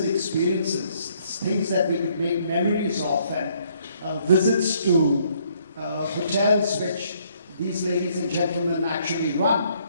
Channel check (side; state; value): both; inverted; correlation -0.67